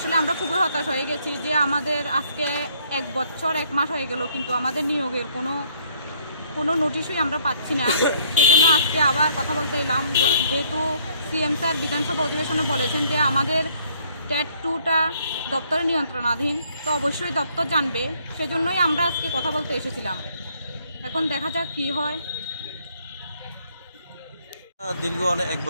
আমরা খুবই হতাশ হয়ে গেছি যে আমাদের আজকে 1 বছর 1 মাস হয়ে গেল, কিন্তু আমাদের নিয়োগের কোনো নোটিশই আমরা পাচ্ছি না। সেই জন্য আজকে আবার কথা বলতে এলাম, যেহেতু সিএম স্যার বিধানসভা অধিবেশনে বলেছেন যে আমাদের টেট 2টা দপ্তরের নিয়ন্ত্রণাধীন, তো অবশ্যই দপ্তর জানবে। সেজন্যই আমরা আজকে কথা বলতে এসেছিলাম। এখন দেখা যাক কি হয়। দীর্ঘ 1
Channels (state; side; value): inverted; both; correlation -0.65